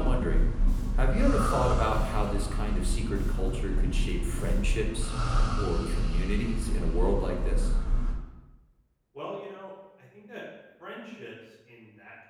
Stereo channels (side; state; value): both; identical; correlation 1.00